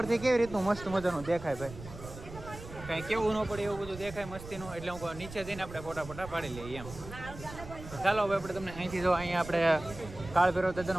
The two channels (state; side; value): noise; right; rumble, 13 dB below the sound